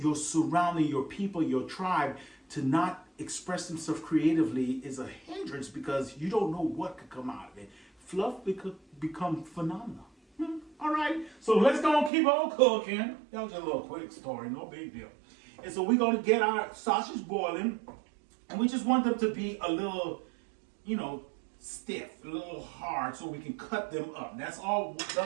surrounding, your people, your tribe to not express themselves creatively is a hindrance because you don't know what could come out of it. Fluff could become phenomenal. All right. So let's go and keep on cooking. That was a little quick story. No big deal. And so we're going to get our sausage boiling. And we just want them to be a little, you know, stiff, a little hard, so we can cut them up. That's all.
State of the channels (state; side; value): drops out; left; at 12.1 s